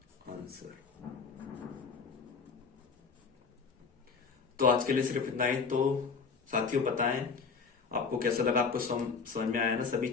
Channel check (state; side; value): quieter; right; 5.3 dB